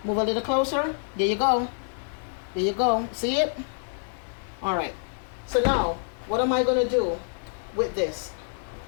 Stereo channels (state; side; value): silent; right; digital silence